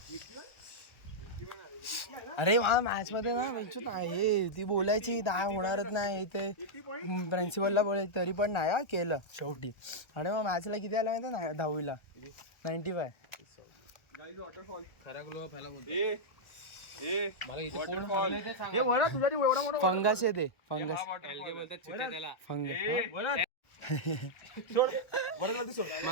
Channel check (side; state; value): right; late; 1.4 ms